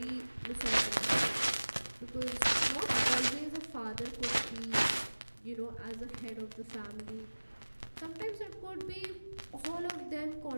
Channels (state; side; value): inverted; both; correlation -1.00